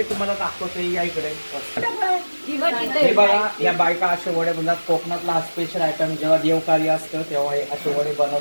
तुम्हाला दाखवतो या इकडे. हे बघा, या बायका असे वडे बनवतात. कोकणातला हा स्पेशल आयटम जेव्हा देवकार्य असतं तेव्हा हे असे वडे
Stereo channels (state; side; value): inverted; both; correlation -1.00